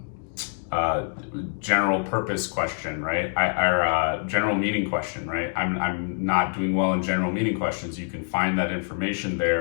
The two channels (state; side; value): silent; right; 61 dB below the other